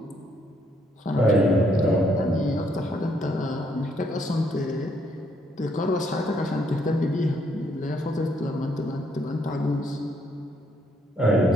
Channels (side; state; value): both; normal; correlation 0.71